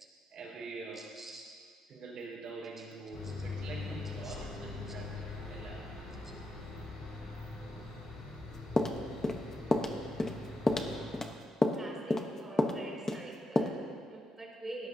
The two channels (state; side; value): normal; both; correlation 0.85